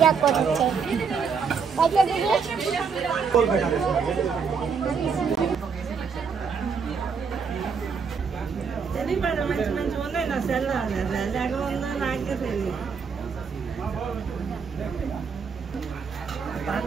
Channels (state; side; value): quieter; left; 5.8 dB